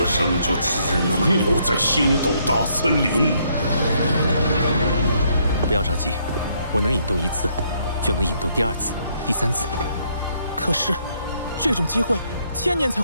生就只能留在星斗大森林。不要着急，我能引动1次，就能引动第2次、第3次。可是，这种机会1000年才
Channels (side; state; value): both; inverted; correlation -0.71